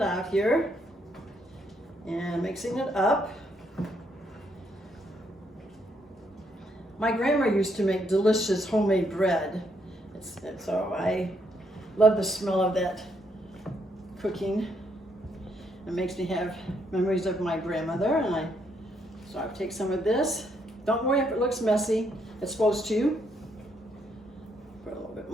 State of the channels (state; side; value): normal; both; correlation 0.74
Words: out here and mixing it up. My grandma used to make delicious homemade bread, so I love the smell of that cooking. It makes me have memories of my grandmother, so I'll take some of this. Don't worry if it looks messy. It's supposed to. Put a little bit